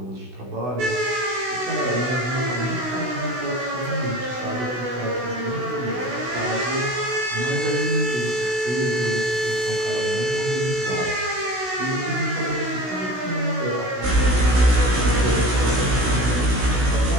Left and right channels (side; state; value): left; late; 16 ms